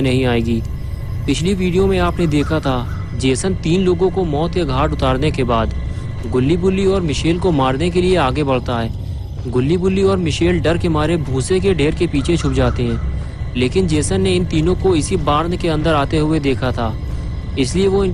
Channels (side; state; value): both; identical; correlation 1.00